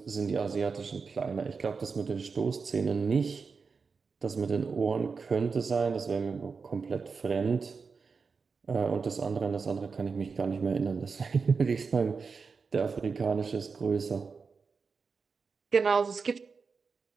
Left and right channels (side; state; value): left; quieter; 5.0 dB